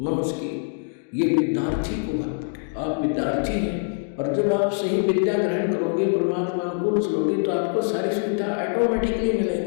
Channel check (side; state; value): right; silent; digital silence